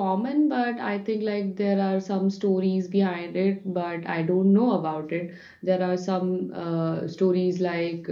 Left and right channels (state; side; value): identical; both; correlation 1.00